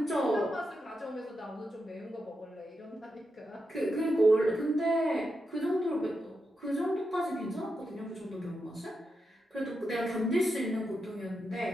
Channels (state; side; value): normal; both; correlation 0.87